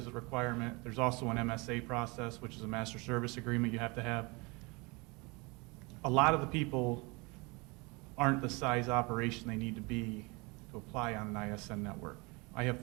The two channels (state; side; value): quieter; left; 27.0 dB